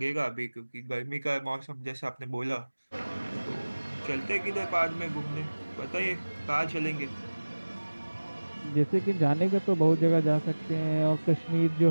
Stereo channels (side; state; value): both; inverted; correlation -1.00